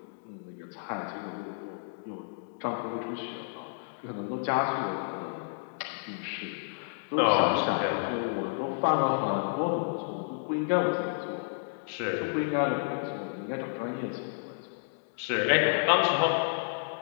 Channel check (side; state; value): right; silent; digital silence